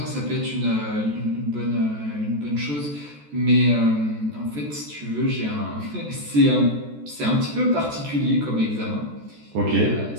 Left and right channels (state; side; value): late; left; 14 ms